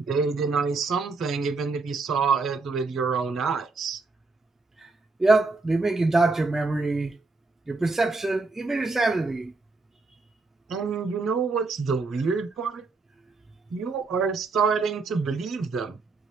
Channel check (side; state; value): left; quieter; 3.8 dB